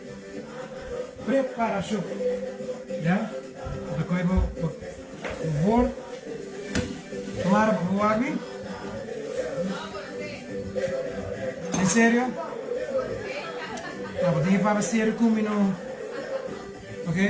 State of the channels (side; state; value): both; identical; correlation 1.00